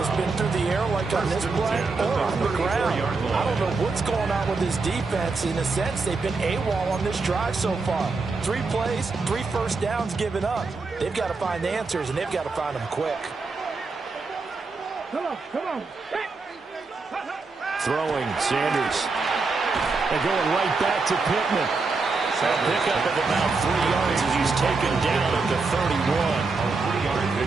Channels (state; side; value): quieter; left; 4.1 dB